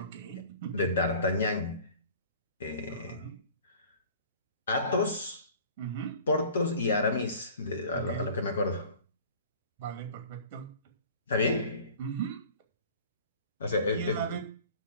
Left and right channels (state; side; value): inverted; both; correlation -0.46